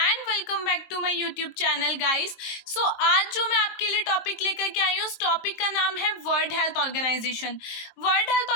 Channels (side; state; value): right; late; 22 ms